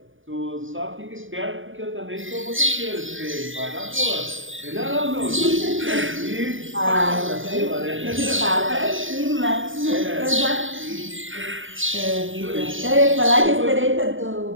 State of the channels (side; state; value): left; late; 0.57 ms